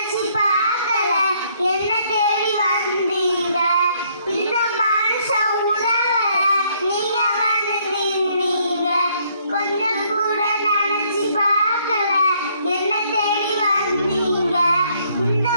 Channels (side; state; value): both; inverted; correlation -0.67